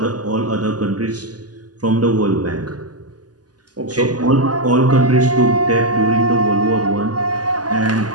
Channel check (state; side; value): late; left; 0.69 ms